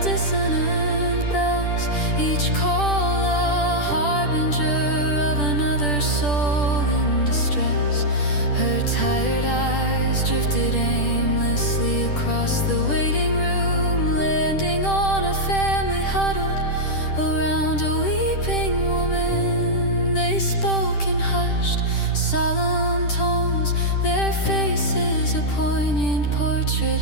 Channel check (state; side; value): late; right; 10 ms